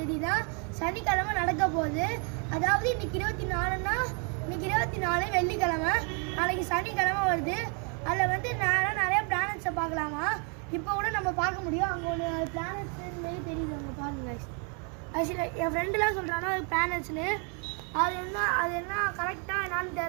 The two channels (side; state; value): left; quieter; 37.4 dB